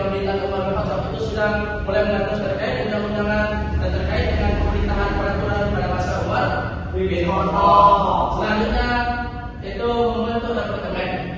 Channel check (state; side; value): identical; both; correlation 1.00